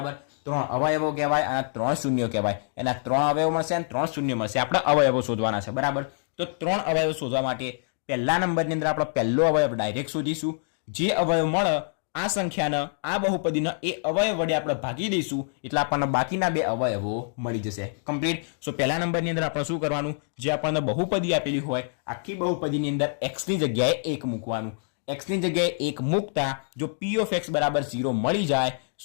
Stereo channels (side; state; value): right; silent; digital silence